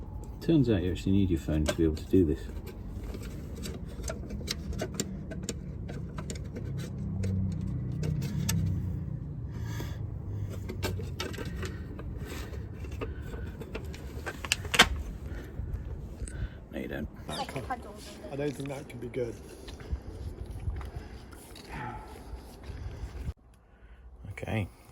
turns out you actually need your phone to be able to do this. No, you don't. I don't think that can be good. Okay,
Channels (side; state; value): both; identical; correlation 1.00